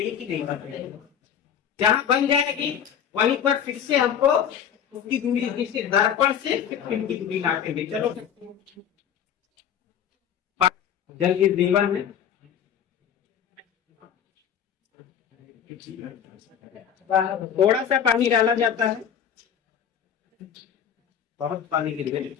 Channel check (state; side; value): quieter; right; 8.7 dB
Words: है कि नहीं बन रही है। जहां बन जाएगी वहीं पर फिर से हमको उसकी दूरी, जैसे दर्पण से फिर पिन की दूरी नापेंगे। चलो, जल की जीवन है, थोड़ा सा पानी डाला जाता है, बहुत पानी गिर गए।